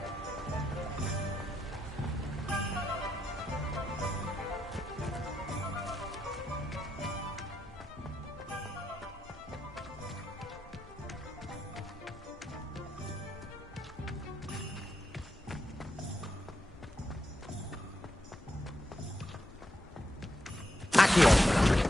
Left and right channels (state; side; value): normal; both; correlation 0.83